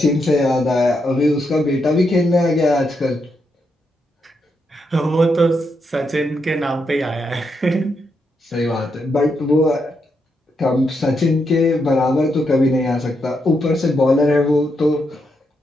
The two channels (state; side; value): normal; both; correlation 0.81